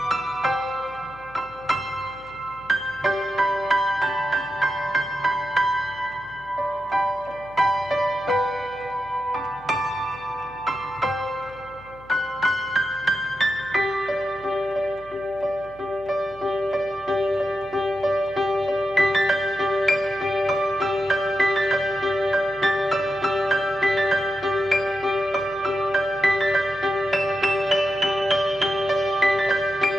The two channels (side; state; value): left; noise; hum, 22 dB below the sound